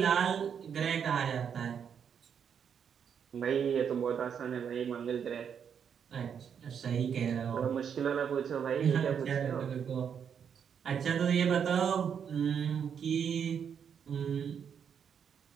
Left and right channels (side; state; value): left; quieter; 7.6 dB